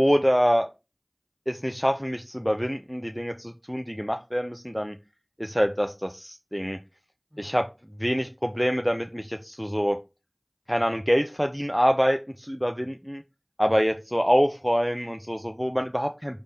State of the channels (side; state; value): both; identical; correlation 1.00